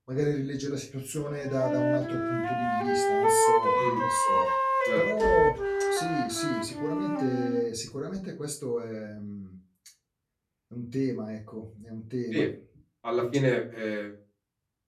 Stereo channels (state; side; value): identical; both; correlation 1.00